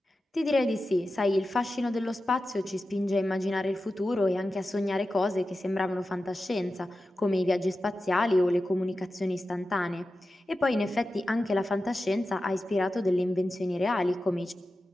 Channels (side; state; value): both; normal; correlation 0.93